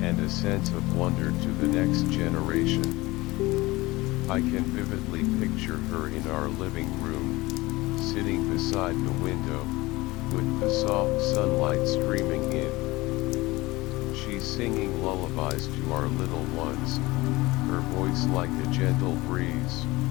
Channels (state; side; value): quieter; right; 20.7 dB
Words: and a sense of wonder to the next generation. I can vividly picture her in our living room, sitting beside the window, with the soft sunlight streaming in. She's singing lullabies to our little ones, her voice like a gentle breeze.